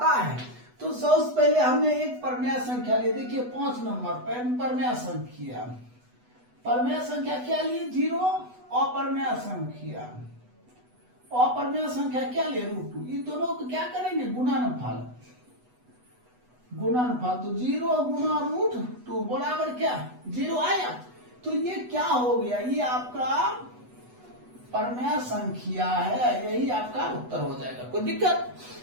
है। तो सबसे पहले हमने एक परमेय संख्या ली, देखिए 5 नंबर परमेय संख्या, परमेय संख्या क्या लिए 0, अपरमेय संख्या, अपरमेय संख्या क्या ले √2, इन दोनों को क्या करेंगे गुणनफल, गुणनफल। तो 0 गुणा √2 बराबर क्या 0 आया। तो ये क्या हो गया, ये आपका परमेय संख्या है, यही आपका उत्तर हो जाएगा, कोई दिक्कत।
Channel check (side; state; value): left; late; 8.1 ms